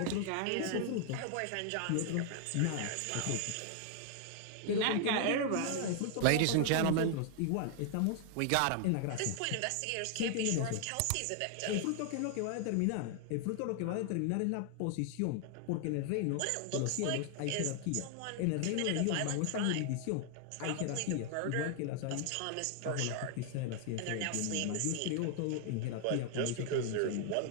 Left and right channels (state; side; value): different; both; correlation 0.00